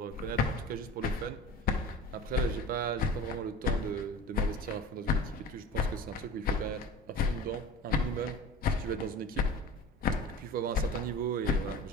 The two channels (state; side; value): normal; both; correlation 0.37